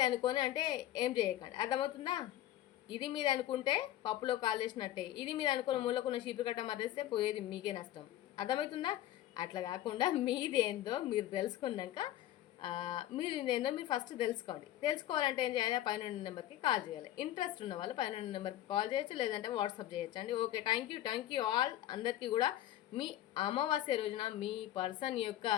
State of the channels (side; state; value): right; quieter; 13.4 dB